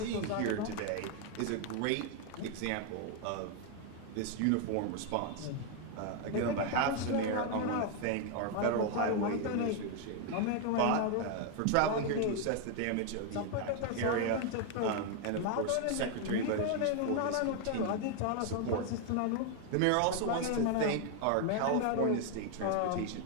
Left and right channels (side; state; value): both; different; correlation 0.01